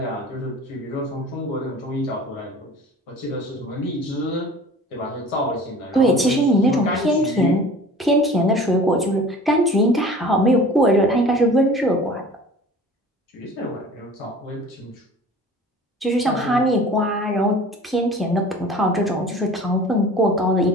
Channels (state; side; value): normal; both; correlation 0.43